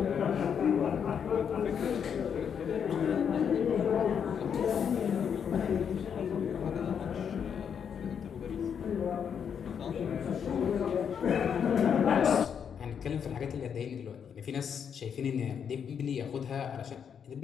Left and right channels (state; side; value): quieter; right; 7.6 dB